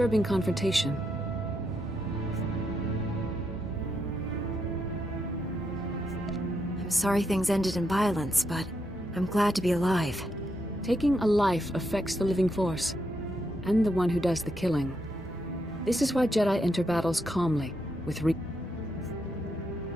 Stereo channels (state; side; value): normal; both; correlation 0.80